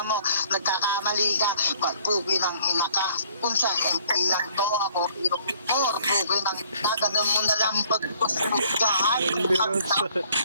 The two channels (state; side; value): inverted; both; correlation -0.59